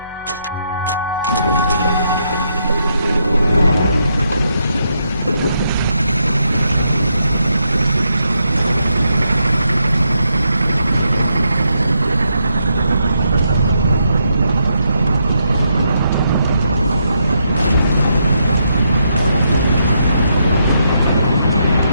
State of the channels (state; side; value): inverted; both; correlation -0.79